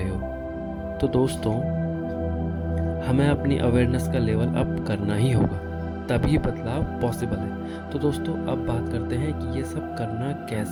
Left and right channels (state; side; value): identical; both; correlation 1.00